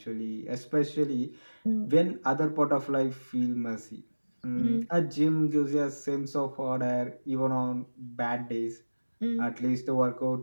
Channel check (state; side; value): inverted; both; correlation -1.00